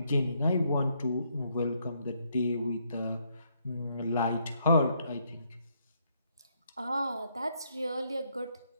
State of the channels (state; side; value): inverted; both; correlation -0.74